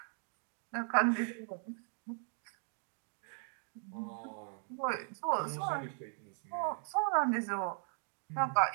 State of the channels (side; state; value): left; silent; 52 dB below the other